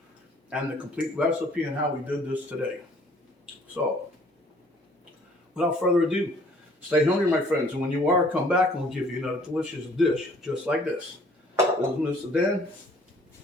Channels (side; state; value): both; normal; correlation 0.57